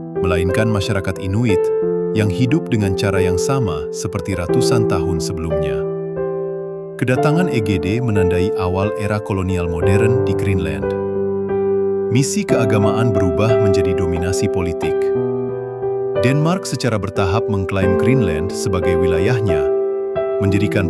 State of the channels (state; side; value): identical; both; correlation 1.00